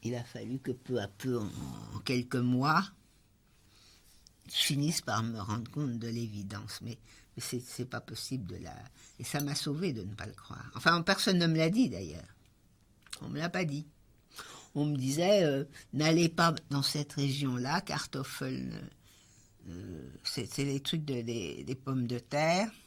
Il a fallu que peu à peu, en quelques mois, je finisse par me rendre compte de l'évidence. Mais c'est pas possible Et ça m'a sauvé de ne pas le croire. Enfin, personne ne me l'a dit d'ailleurs. On ne me l'a pas dit. On me disait, n'allez pas dans cette région-là, Kartoffeln, c'est les trucs des pommes de terre.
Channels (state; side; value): identical; both; correlation 1.00